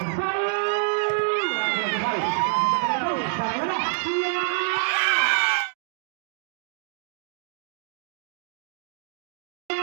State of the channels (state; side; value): silent; left; digital silence